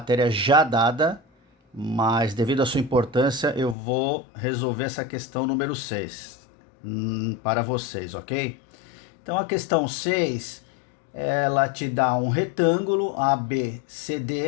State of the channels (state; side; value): drops out; right; at 3.8 s